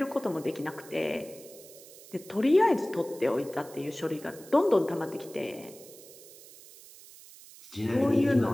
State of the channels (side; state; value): right; noise; hiss, 19 dB below the sound